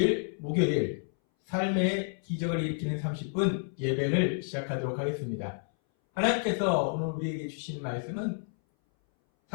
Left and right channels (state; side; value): silent; right; 58 dB below the other